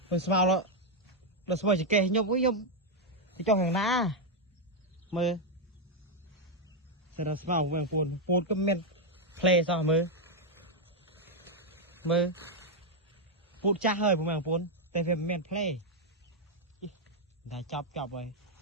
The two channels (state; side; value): normal; both; correlation 0.01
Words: Mình smile đó. Là smile chỉ kê nhom với nhom. Thì cho hàng ná. Mưa. Sẽ là smile phụ mẹ phôn có men. Play sao mưa. Mưa. Phút cha hơi phụ mẹ phôn. Tại vì men play. Đã chọc rồi.